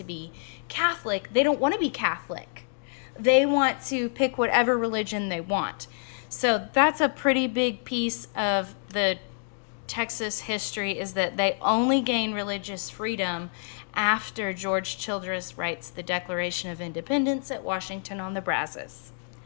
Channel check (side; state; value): right; silent; digital silence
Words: be Catholic. They don't want to be Catholic. They want to pick whatever religion they want. So that's a pretty big piece of the Texas history, is that they only gain religious freedom after George Childress writes the Declaration of Independence at Washington on the Brazos.